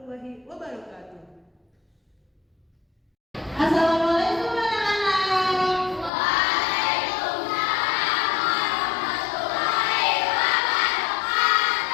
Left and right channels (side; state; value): right; drops out; at 6.1 s